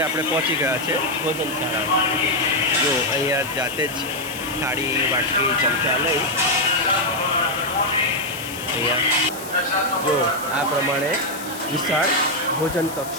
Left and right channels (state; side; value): noise; left; hiss, 13 dB below the sound